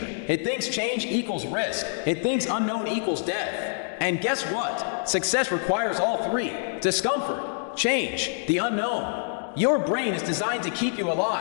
It thinks change equals risk. It thinks unknown equals death. And guess what? Success requires all three: discomfort, change, the unknown. Your brain is designed to keep you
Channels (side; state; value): right; silent; digital silence